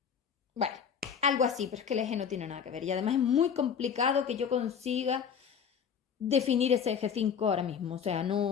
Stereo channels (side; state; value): right; quieter; 7.3 dB